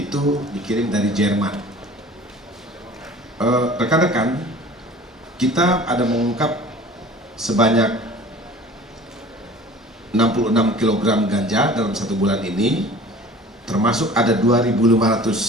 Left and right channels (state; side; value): normal; both; correlation 0.44